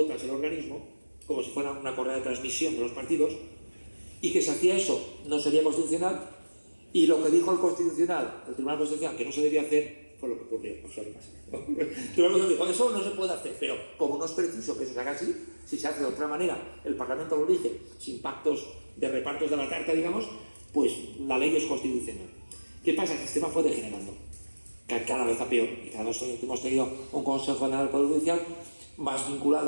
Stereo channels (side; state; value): both; inverted; correlation -1.00